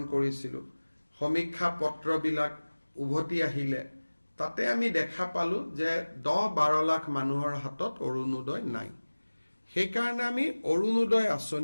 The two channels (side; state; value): both; inverted; correlation -1.00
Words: কৰিছিলোঁ। সমীক্ষা পত্ৰবিলাক উভতি আহিলে তাতে আমি দেখা পালোঁ যে ১০-১২ লাখ মানুহৰ হাতত অৰুণোদয় নাই। সেইকাৰণে আমি অৰুণোদয়